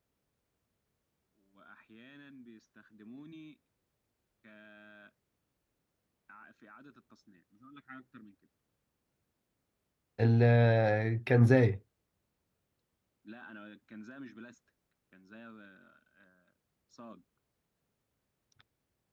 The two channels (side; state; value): both; identical; correlation 1.00